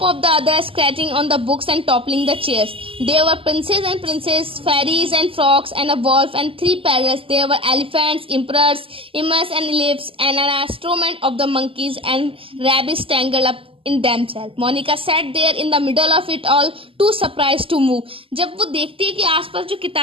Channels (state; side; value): late; left; 0.26 ms